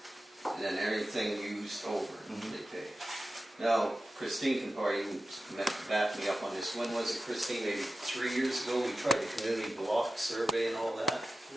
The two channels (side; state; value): both; normal; correlation 0.93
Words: and then everything used over, Mhm. they pay. Now, Christine can probably back me up on this. When was it, Christine? Maybe 3 years ago, we tried a community block survey and all that?